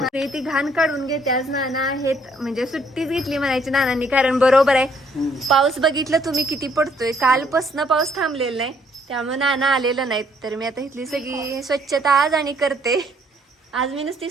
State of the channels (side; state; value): both; normal; correlation 0.66